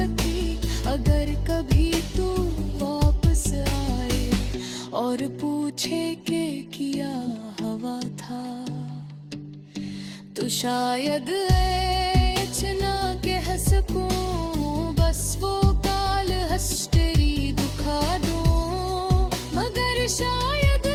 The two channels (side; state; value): both; identical; correlation 1.00